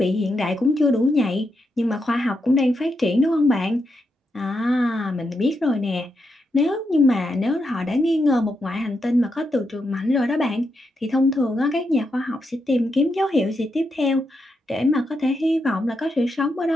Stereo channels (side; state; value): both; normal; correlation 0.83